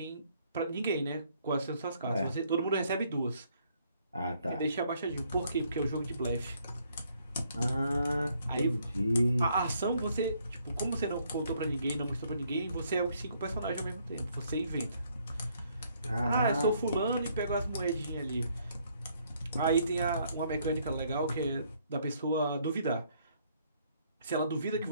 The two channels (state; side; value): inverted; both; correlation -0.68